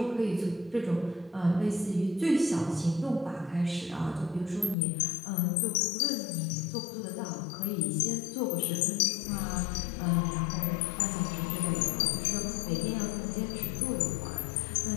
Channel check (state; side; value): drops out; right; at 4.8 s